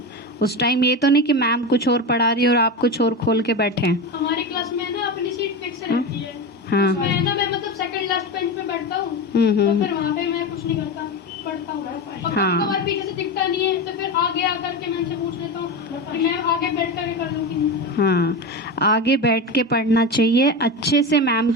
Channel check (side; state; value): both; normal; correlation 0.21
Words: उस टाइम ये तो नहीं कि मैम कुछ और पढ़ा रही है और आप कुछ और खोल के बैठे हैं। हमारी क्लास में ना अपनी सीट फिक्स रहती है। हाँ मैं ना मैं मतलब सेकंड लास्ट बेंच पे बैठता हूँ, तो फिर वहाँ पे मैं कुछ नहीं करता, पढ़ता हूँ। और हाँ। कभी-कभार पीछे से दिखता नहीं है तो फिर आगे आकर के मैं उनसे पूछ लेता हूँ, फिर मैं आगे बैठ करके कर लूँगी। हाँ, आगे बैठ के पढ़ना चाहिए, अच्छे से मैम